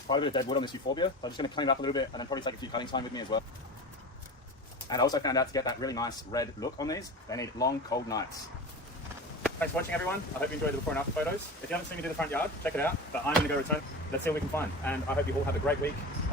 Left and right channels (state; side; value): normal; both; correlation 0.30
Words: quite a bit of dead wood on this euphorbia, so I'm just going to clean it up a little bit and then probably take a few cutting time with me as well. And I also found out to get that really nice red look on these, they need long, cold nights. Thanks for watching, everyone. I hope you enjoyed the before and after photos. If you haven't seen me do the front yard, check it out. But I'm going to go return. Let's see what we can find. And I hope you all have a great week.